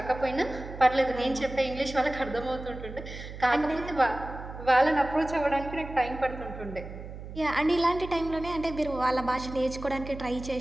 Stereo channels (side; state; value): right; noise; hum, 11 dB below the sound